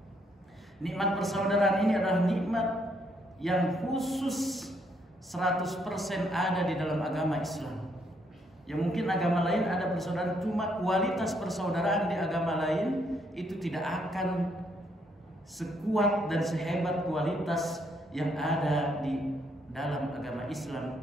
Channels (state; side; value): normal; both; correlation 0.72